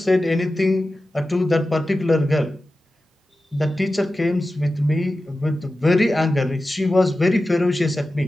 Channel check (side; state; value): both; normal; correlation 0.93